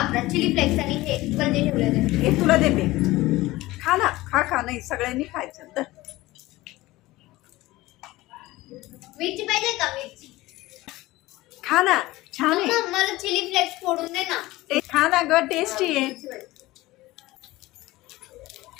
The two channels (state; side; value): quieter; right; 18.6 dB